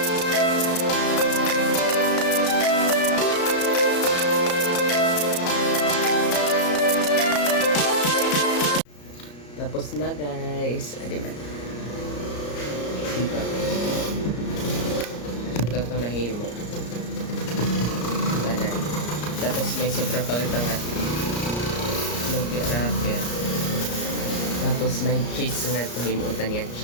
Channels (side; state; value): right; late; 34 ms